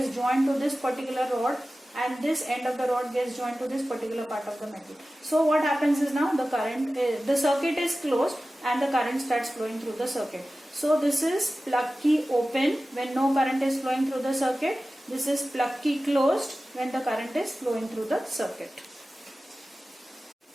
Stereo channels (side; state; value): both; normal; correlation 0.95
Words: joined to this particular rod, and this end of the rod gets joined to this particular part of the metal. So what happens is now the circuit is closed and the current starts flowing through the circuit. So this is plug key open when no current is flowing through the circuit. This is plug key closed when the current is flowing through the circuit.